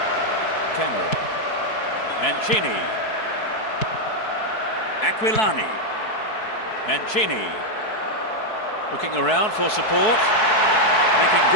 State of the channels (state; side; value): late; right; 4.7 ms